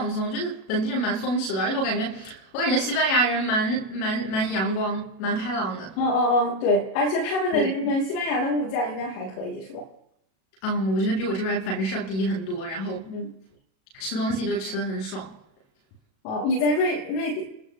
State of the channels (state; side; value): late; right; 37 ms